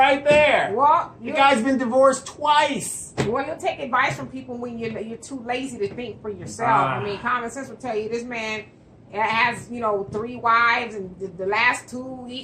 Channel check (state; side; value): identical; both; correlation 1.00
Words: there. Well, the guy's been divorced twice. Well, you'll take advice from people when you're too lazy to think for yourself. I mean, common sense will tell you this man has 3 wives, and the last 2